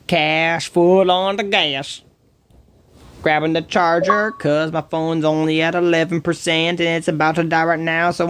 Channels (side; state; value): both; identical; correlation 1.00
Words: cash, full on the gas. Grabbing the charger, cause my phone's only at 11% and it's about to die right now,